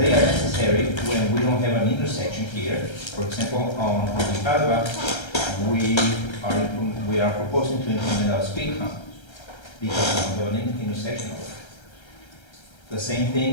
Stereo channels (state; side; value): late; right; 1.3 ms